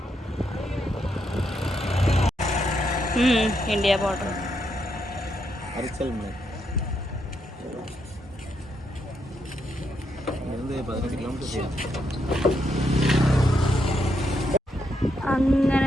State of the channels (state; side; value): normal; both; correlation 0.79